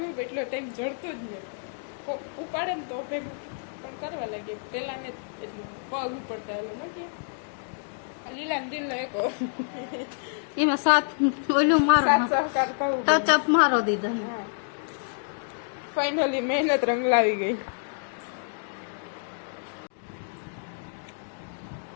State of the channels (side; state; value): right; silent; digital silence